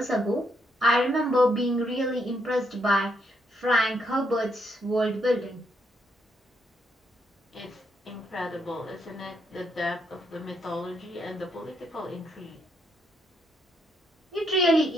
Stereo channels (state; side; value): normal; both; correlation 0.76